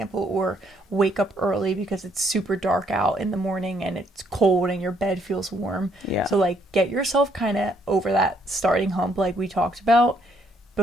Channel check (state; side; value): normal; both; correlation 0.69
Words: or wake up early because it's super dark out in the morning and it's cold and your bed feels warm. Yeah. So like get yourself kind of over that starting hump like we talked about